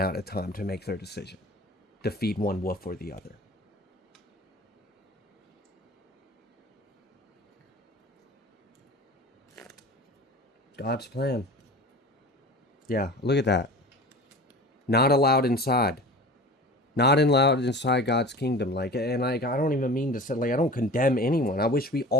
of time to make their decision, to feed one wolf or the other. God's plan. Yeah, look at that. Not allowed inside. Not allowed inside God's kingdom. Like, and I don't even mean to say, like, I don't condemn anyone. I wish we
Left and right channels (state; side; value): normal; both; correlation 0.37